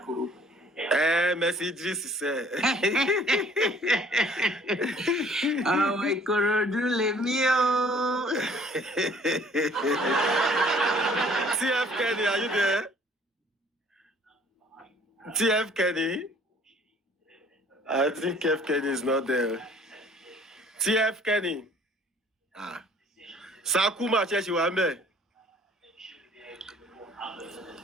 Messages say. Omo Ikorodu, let me TF Kenny, are you there? TF Kenny? I think TF Kenny is not there. TF Kenny. Sakuma Cheshi Wambe.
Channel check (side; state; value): both; normal; correlation 0.56